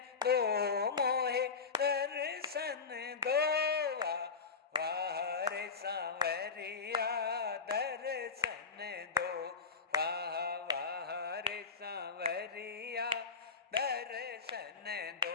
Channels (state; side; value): quieter; right; 5.2 dB